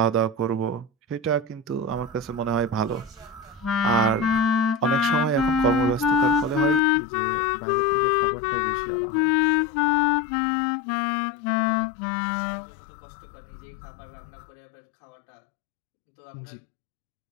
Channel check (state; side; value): drops out; right; at 6.8 s